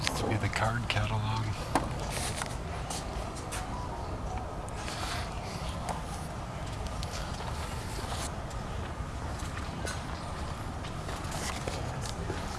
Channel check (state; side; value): identical; both; correlation 1.00